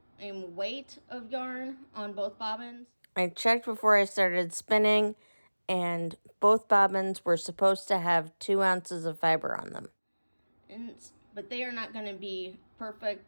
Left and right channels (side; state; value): both; inverted; correlation -1.00